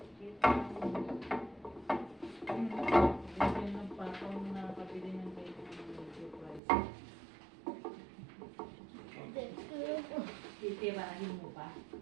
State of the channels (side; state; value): left; drops out; at 6.6 s